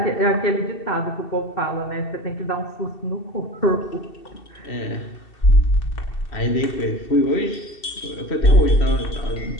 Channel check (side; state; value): right; late; 2.7 ms